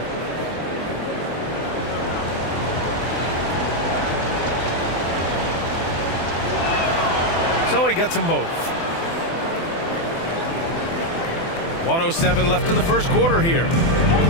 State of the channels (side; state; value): right; late; 24 ms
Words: So he gets them both. 1:07 left in the first quarter here.